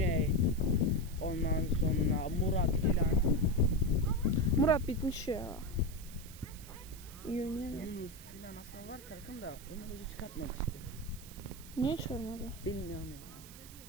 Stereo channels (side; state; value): right; noise; hiss, 17 dB below the sound